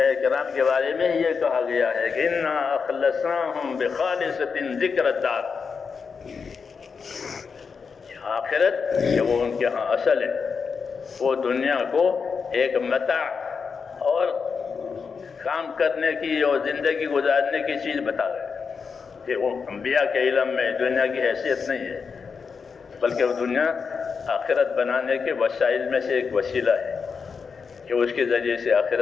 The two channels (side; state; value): right; quieter; 5.6 dB